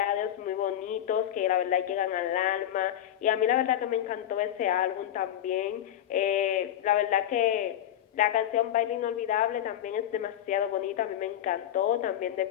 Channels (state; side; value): quieter; right; 11.3 dB